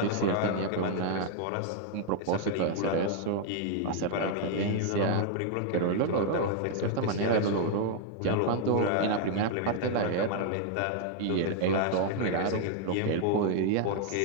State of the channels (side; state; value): both; different; correlation 0.00